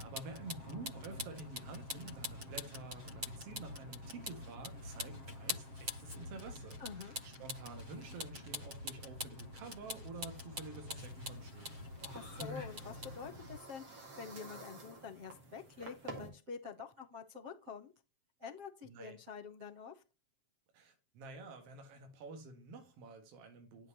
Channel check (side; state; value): left; late; 7.5 ms